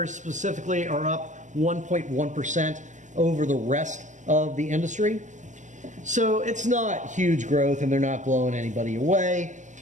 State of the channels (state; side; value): late; left; 0.36 ms